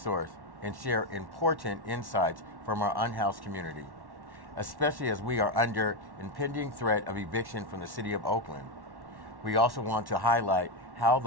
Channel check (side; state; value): left; late; 1.1 ms